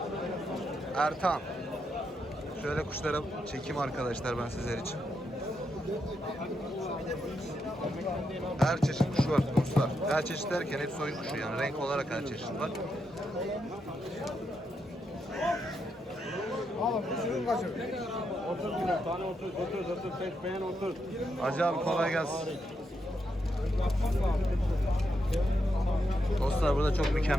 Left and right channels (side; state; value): both; normal; correlation 0.82